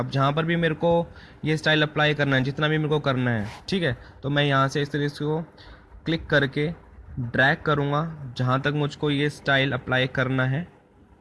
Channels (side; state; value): both; identical; correlation 1.00